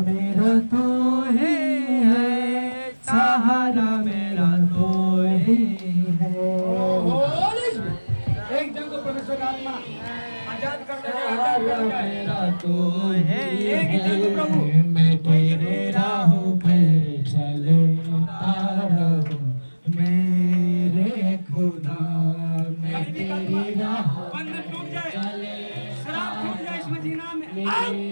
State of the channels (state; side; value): inverted; both; correlation -1.00